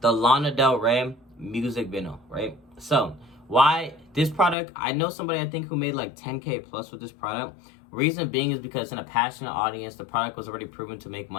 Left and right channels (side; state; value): right; drops out; at 4.5 s